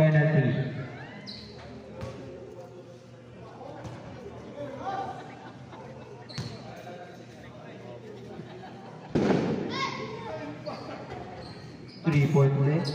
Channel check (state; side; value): identical; both; correlation 1.00